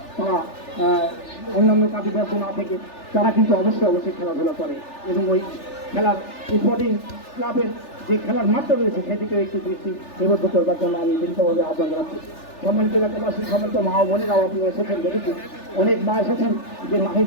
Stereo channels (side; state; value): right; late; 3.4 ms